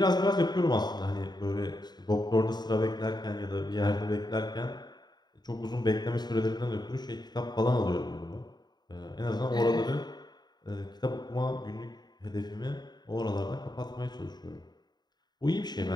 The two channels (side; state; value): right; late; 0.20 ms